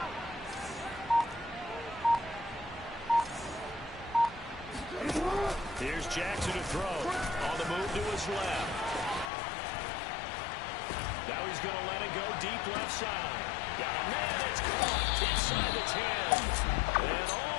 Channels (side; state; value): right; drops out; at 9.3 s